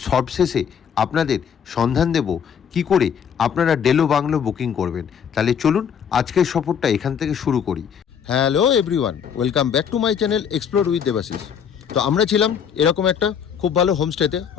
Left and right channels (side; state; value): right; quieter; 7.7 dB